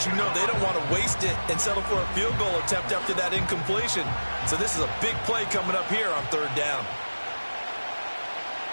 you know they don't want to waste it and settle for a field goal attempt after that incompletion. So this is a big play coming up here on third down.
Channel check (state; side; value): inverted; both; correlation -1.00